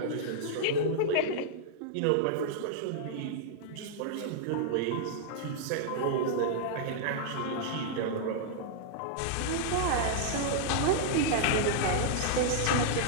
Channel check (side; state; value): both; different; correlation -0.01